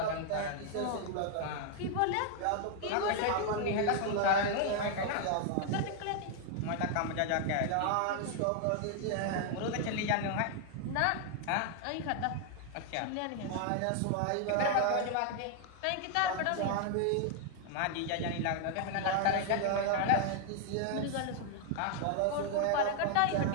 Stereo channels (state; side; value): different; both; correlation 0.00